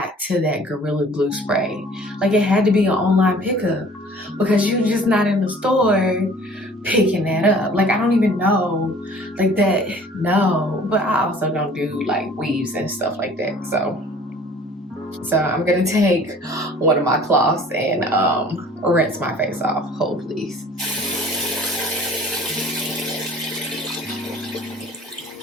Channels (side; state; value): both; normal; correlation 0.50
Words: to that Gorilla Glue spray. Like, it had to be an online pickup because you're just not in the store picking that up. Like, I don't even know like that. No, but I also don't do like weaves and stuff like that. So I'm gonna take one of my cloths and rinse my face off. Hold please.